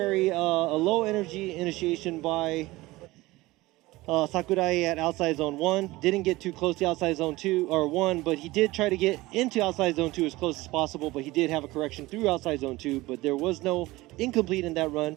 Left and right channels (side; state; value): left; quieter; 19.6 dB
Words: a low energy initiation by Sakurai at outside zone 1. Didn't get too close to outside zone 2 or 1, but he did try to get into outside zone 2 as close as possible, but he did have a correction through outside zone 2, but there was no incomplete in that run,